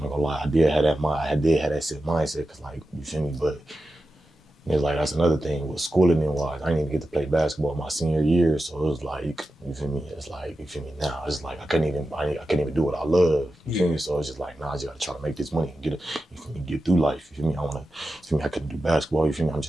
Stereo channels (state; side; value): normal; both; correlation 0.92